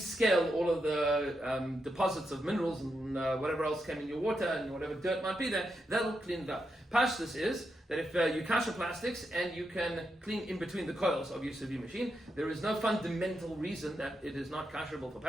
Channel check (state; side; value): normal; both; correlation 0.84